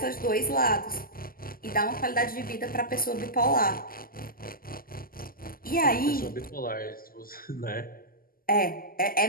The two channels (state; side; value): late; right; 0.42 ms